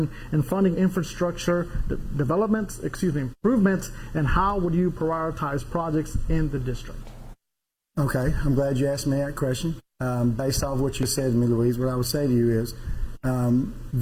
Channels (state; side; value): identical; both; correlation 1.00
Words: and funding infrastructure improvements, and how would you prioritize projects in the district? Okay, I'm glad you asked me that question. Based off what you said to me, Louise, what I would say to you is